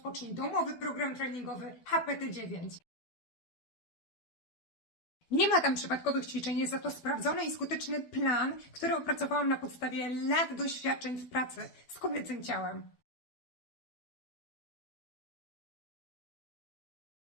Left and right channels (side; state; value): right; late; 12 ms